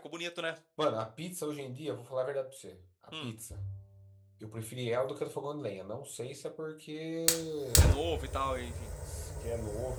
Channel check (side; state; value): both; identical; correlation 1.00